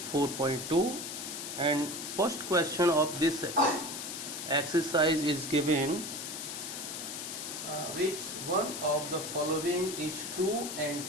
4.2, and first question of this exercise is given, which one of the following is true and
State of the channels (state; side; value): noise; left; hiss, 6 dB below the sound